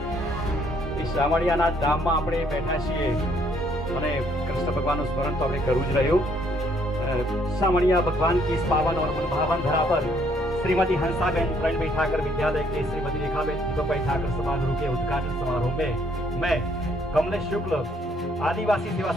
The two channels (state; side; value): normal; both; correlation 0.66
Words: એ શામળિયાના ધામમાં આપણે બેઠા છીએ અને કૃષ્ણ ભગવાનનું સ્મરણ તો આપણે કરવું જ રહ્યું शामणिया भगवान की इस पावन और मनभावन धरा पर श्रीमती हंसाबेन प्रण बैठाकर विद्यालय के श्रीमती रेखाबेन दीपक बैठाकर समारोह के उद्घाटन समारोह में मैं कमलेश शुक्ल आदिवासी सेवा